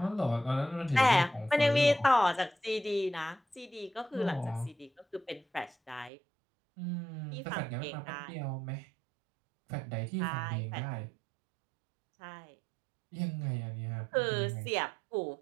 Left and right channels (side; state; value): left; drops out; at 6.1 s